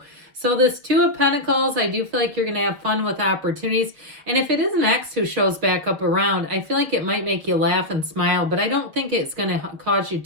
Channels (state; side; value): late; left; 6.6 ms